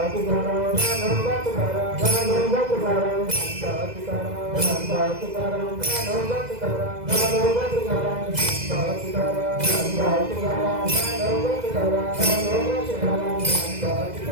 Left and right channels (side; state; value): left; late; 2.0 ms